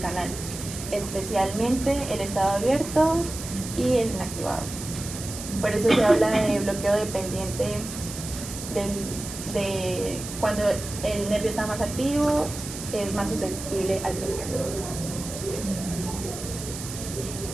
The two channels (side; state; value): right; noise; hiss, 9 dB below the sound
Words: especialmente el estado abierto y el inactivado. Por eso se habla de bloqueo dependiente de cuando el nervio está más activo, es más susceptible al bloqueo.